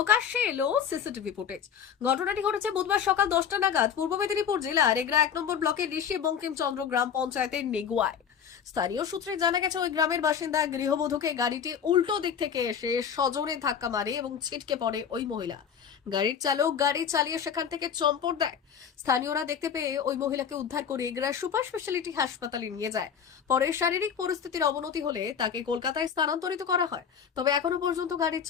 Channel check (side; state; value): right; quieter; 7.8 dB